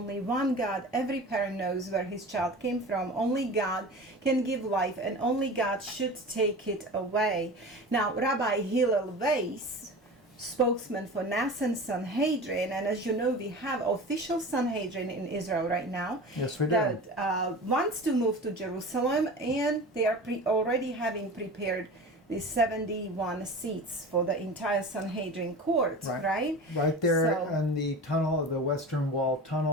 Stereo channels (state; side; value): normal; both; correlation 0.34